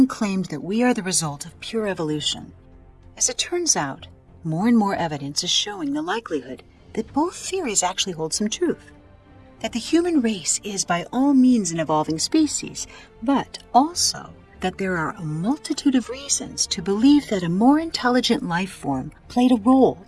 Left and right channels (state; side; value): identical; both; correlation 1.00